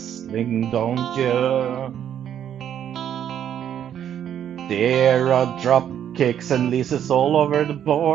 don't you? There are drop kicks and leases all over the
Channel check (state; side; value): quieter; left; 9.8 dB